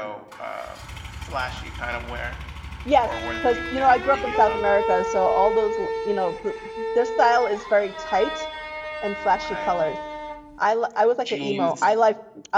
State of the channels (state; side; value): identical; both; correlation 1.00